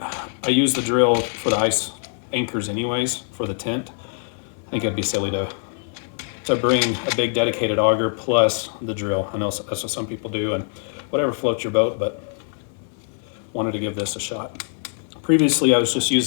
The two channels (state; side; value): silent; right; 59 dB below the other